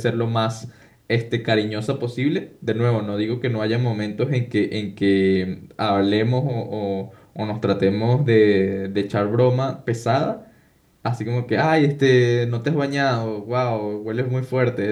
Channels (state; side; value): identical; both; correlation 1.00